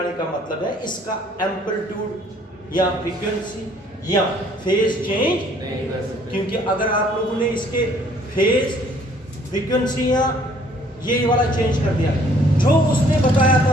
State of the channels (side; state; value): both; normal; correlation 0.60